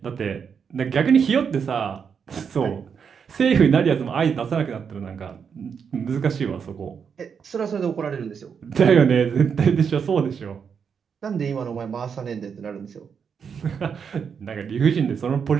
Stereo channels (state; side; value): quieter; left; 6.7 dB